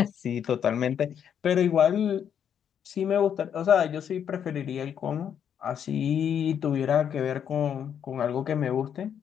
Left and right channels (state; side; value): quieter; right; 8.5 dB